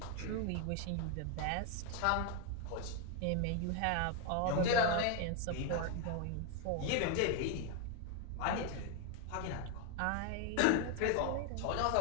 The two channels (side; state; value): both; different; correlation 0.01